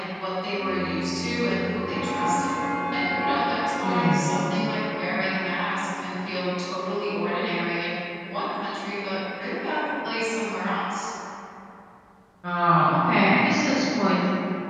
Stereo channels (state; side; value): identical; both; correlation 1.00